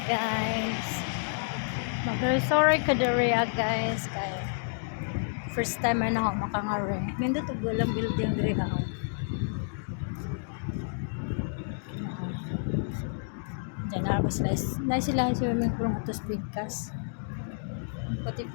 guys. Mag-resort ka diri guys kay first time na ako makangari. Nindot og walang building diri ha. Diyan na ako sila. Na sila swimming pool nga tos bigkas.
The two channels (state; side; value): silent; right; digital silence